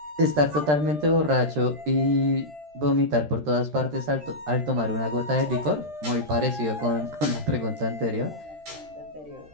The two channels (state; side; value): late; left; 13 ms